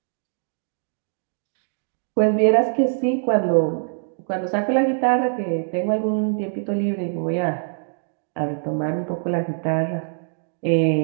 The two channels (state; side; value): silent; left; digital silence